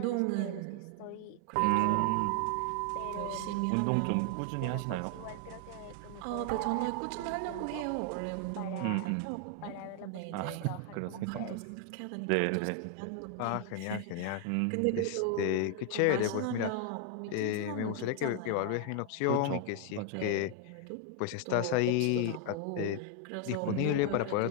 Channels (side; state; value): both; different; correlation 0.00